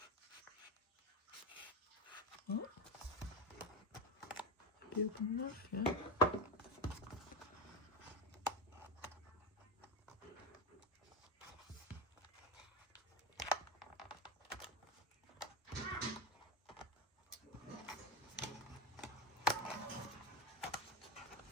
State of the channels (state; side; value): normal; both; correlation 0.18